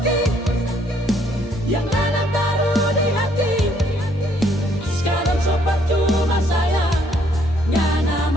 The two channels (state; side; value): normal; both; correlation 0.66